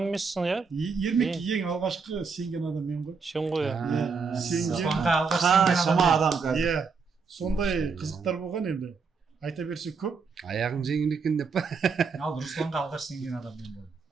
емессің, иә? Ермек ең алғашқы сенген адам мен ғой. Сен ғой, иә. Шама адам қазір. Иә. Сондай қызықтар болған енді. Айта берсе көп. Аяғың жеңіл екен деп па? Ал Русланға алғаш сенген адам мен болдым.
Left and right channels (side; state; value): left; quieter; 5.1 dB